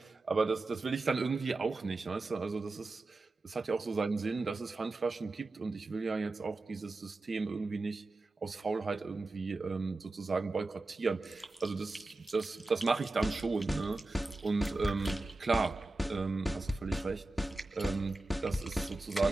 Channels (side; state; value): left; quieter; 3.1 dB